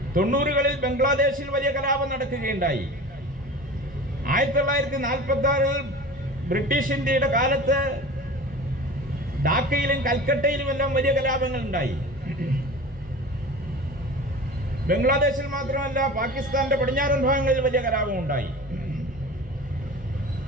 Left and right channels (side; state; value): both; normal; correlation 0.36